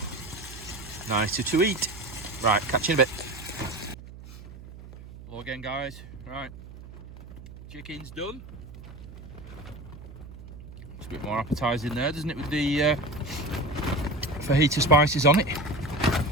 nicer to eat. Right, catch you in a bit. Hello again, guys. Right, chicken's done. It's a bit more appetising there, doesn't it, with the fajita spices on it.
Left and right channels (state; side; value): noise; right; hum, 15 dB below the sound